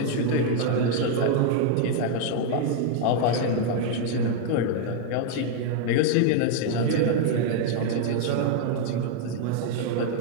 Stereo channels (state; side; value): different; both; correlation 0.00